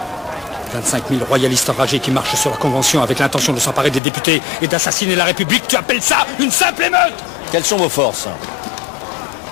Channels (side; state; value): right; drops out; at 4.0 s